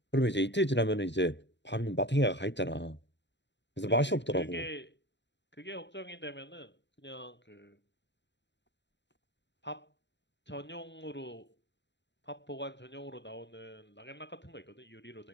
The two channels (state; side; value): late; right; 0.52 ms